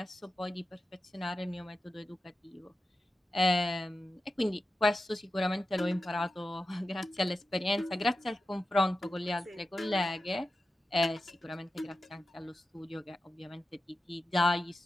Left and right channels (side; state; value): both; normal; correlation 0.92